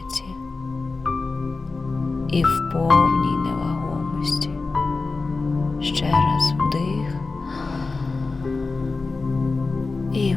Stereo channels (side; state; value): right; quieter; 3.9 dB